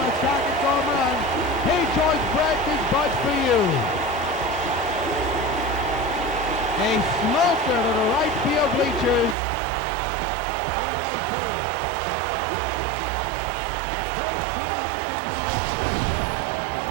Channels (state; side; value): drops out; left; at 9.3 s